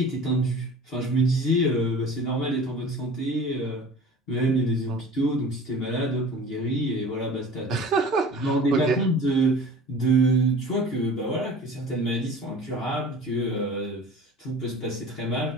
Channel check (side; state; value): both; normal; correlation 0.41